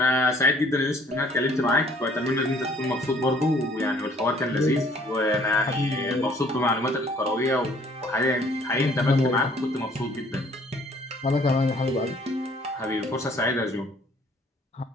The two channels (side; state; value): both; normal; correlation 0.59